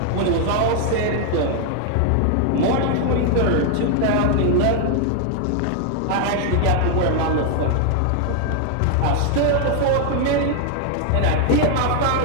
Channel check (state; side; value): different; both; correlation 0.00